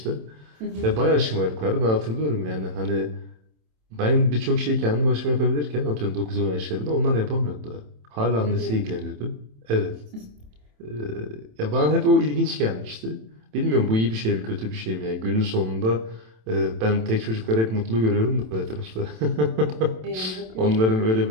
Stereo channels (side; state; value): left; late; 27 ms